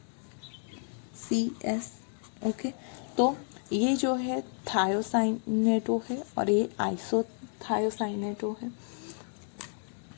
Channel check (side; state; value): right; silent; 55 dB below the other